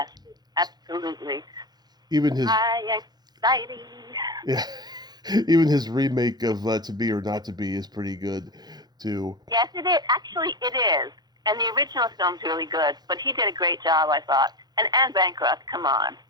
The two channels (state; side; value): late; left; 0.20 ms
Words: absolutely. Even his High Anxiety. Yeah. Even his remake of To Be or Not to Be is pretty good too. Yes, it is. Actually, it is. And the original film's really good, but he did a great job, I thought. And Anne Bancroft, come on.